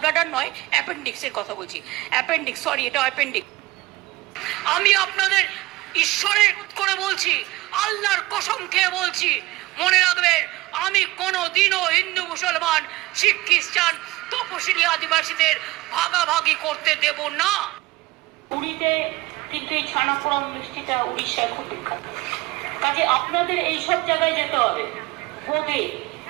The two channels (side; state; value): left; quieter; 19.2 dB